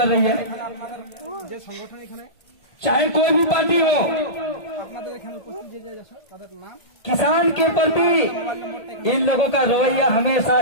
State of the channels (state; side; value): late; right; 1.7 ms